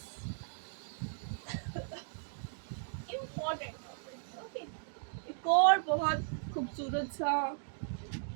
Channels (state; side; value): silent; left; digital silence